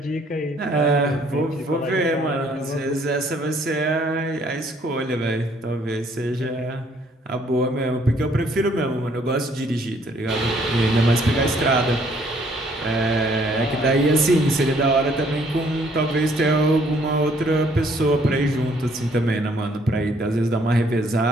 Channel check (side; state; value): both; normal; correlation 0.64